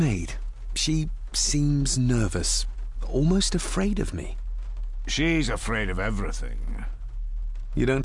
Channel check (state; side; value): identical; both; correlation 1.00